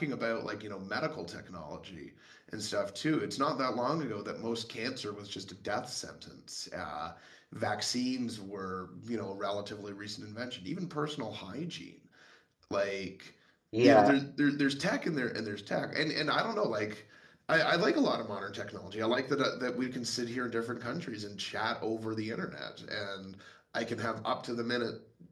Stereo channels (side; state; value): both; identical; correlation 1.00